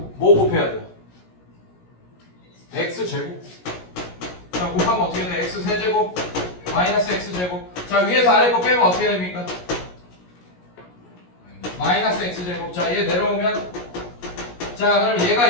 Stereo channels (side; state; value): right; late; 17 ms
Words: 곱해야 돼요? x제곱. 자, 곱하면 어떻게 돼? x3제곱 마이너스 x제곱. 자, 위에서 아래 거 빼면 어떻게 됩니까? 마이너스 x제곱. 자, 얘 내려오면 자, 그럼